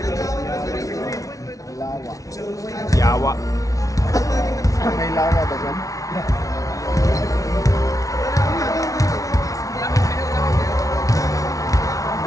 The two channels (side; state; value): right; late; 0.17 ms